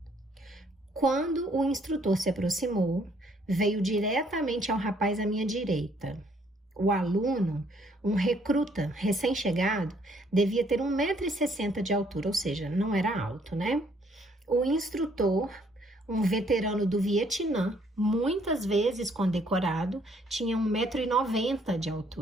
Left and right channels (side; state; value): both; normal; correlation 0.65